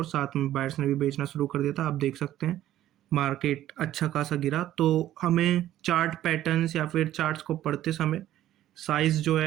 साथ में बायर्स ने भी बेचना शुरू कर दिया था। आप देख सकते हैं मार्केट अच्छा खासा गिरा। तो हमें चार्ट पैटर्न्स या फिर चार्ट्स को पढ़ते समय साइज़ जो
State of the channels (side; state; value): left; quieter; 13.0 dB